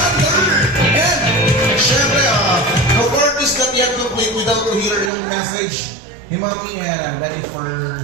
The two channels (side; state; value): left; drops out; at 5.1 s